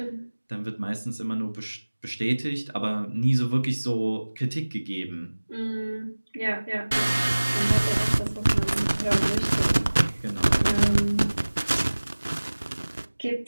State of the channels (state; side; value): inverted; both; correlation -1.00